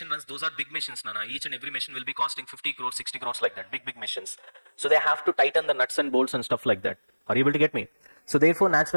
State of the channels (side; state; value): both; inverted; correlation -1.00